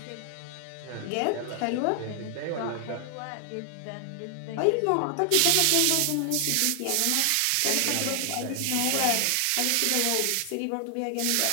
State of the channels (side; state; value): both; different; correlation 0.00